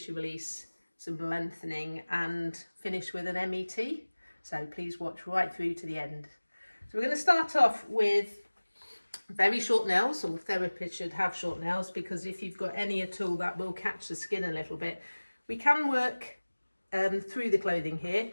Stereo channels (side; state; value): both; inverted; correlation -1.00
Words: release, some lengthening and finish with an MET. So please watch right through to the end. So we're going to start off with very short nails. All therapists should have short nails because if you've got any at all that will catch the skin a little bit. We can work through the clothing here,